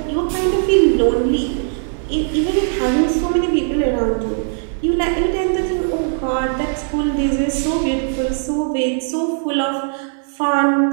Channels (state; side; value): silent; left; 67 dB below the other